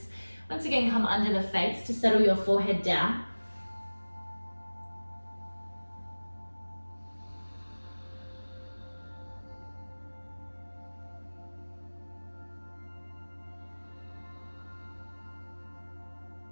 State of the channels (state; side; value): inverted; both; correlation -1.00